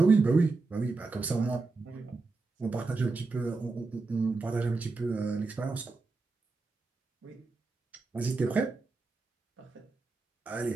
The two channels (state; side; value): quieter; left; 3.9 dB